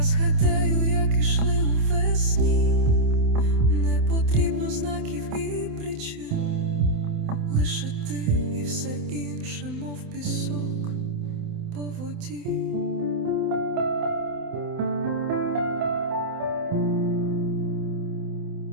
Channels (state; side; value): late; left; 27 ms